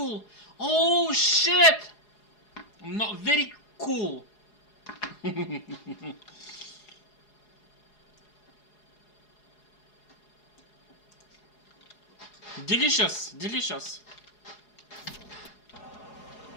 Oh shit. Not very cool. Delicious.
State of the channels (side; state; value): right; late; 4.8 ms